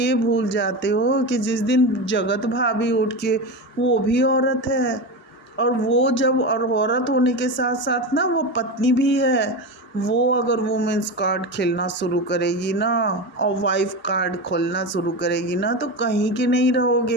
भूल जाते हो कि जिस दिन जगत भाभी उठ के, वो भी औरत है, और वो जब और औरत होने के साथ साथ ना वो पत्नी भी है। वो अगर वुमेंस कार्ड खेलना शुरू करेगी ना और वाइफ कार्ड खोलना शुरू करेगी ना, तो कहीं के नहीं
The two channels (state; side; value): normal; both; correlation 0.21